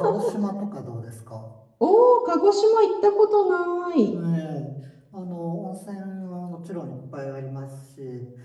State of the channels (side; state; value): both; identical; correlation 1.00